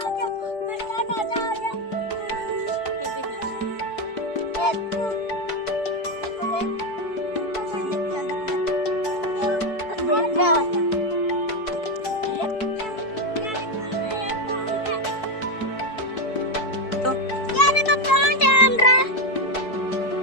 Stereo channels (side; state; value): right; late; 4.6 ms